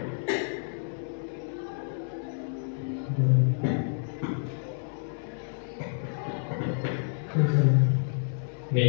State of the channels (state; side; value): silent; right; digital silence